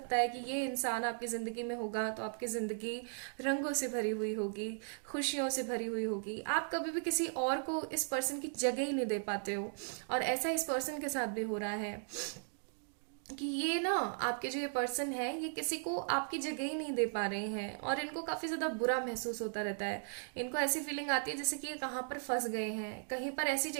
है कि ये इंसान आपकी जिंदगी में होगा तो आपकी जिंदगी रंगों से भरी हुई होगी, खुशियों से भरी हुई होगी। आप कभी भी किसी और को इस पर्सन की जगह ही नहीं दे पाते हो, और ऐसा इस पर्सन के साथ भी हो रहा है कि ये ना, आपके जो ये पर्सन है, ये किसी को आपकी जगह ही नहीं दे पा रहे हैं, और इनको काफी ज्यादा बुरा महसूस होता रहता है। इनको ऐसी फीलिंग आती है जैसे कि ये कहाँ पर फंस गए हैं, कहीं पर ऐसी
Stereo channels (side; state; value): left; silent; digital silence